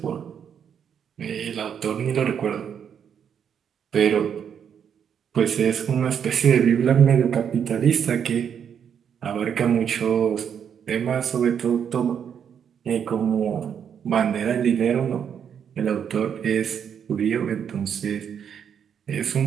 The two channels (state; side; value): quieter; left; 8.0 dB